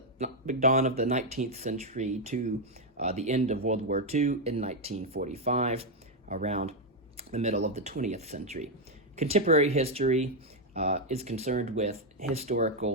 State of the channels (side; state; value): both; normal; correlation 0.02